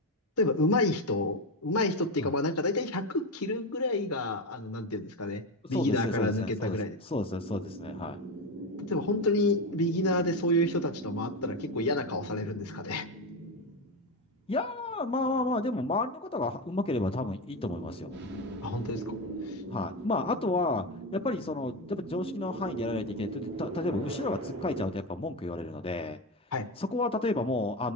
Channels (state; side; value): normal; both; correlation 0.15